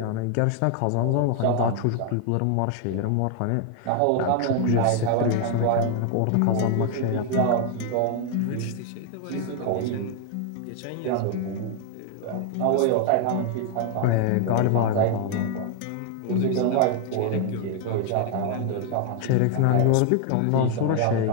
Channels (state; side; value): different; both; correlation 0.00